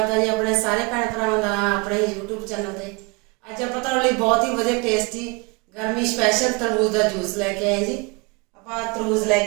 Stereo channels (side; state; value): left; quieter; 29.2 dB